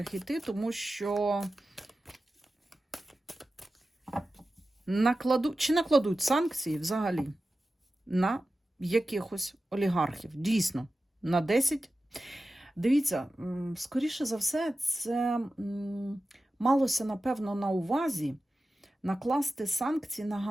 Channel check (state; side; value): normal; both; correlation 0.94